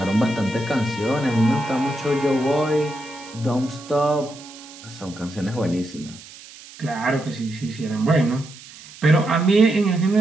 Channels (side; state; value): right; noise; hiss, 18 dB below the sound